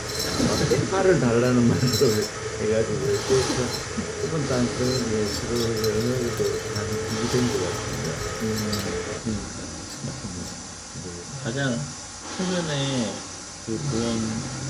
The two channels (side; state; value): both; identical; correlation 1.00